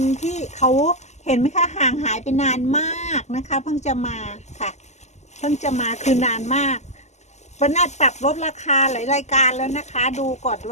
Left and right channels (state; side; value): late; right; 0.33 ms